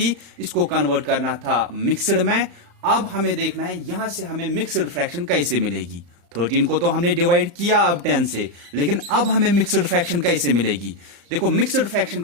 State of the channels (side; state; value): left; late; 35 ms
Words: इसको कन्वर्ट करना था मिक्सड में। अब हमें देखना है यहां से हमें मिक्सड फ्रैक्शन कैसे मिलेगी। 13 को तो हमने डिवाइड किया अब 10 से, लेकिन अब हमें मिक्सड फ्रैक्शन कैसे मिलेगी। देखो मिक्सड फ्रैक्शन